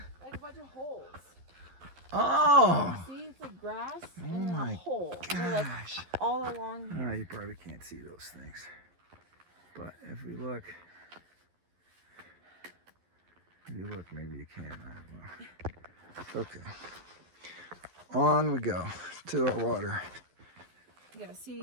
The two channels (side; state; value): left; late; 11 ms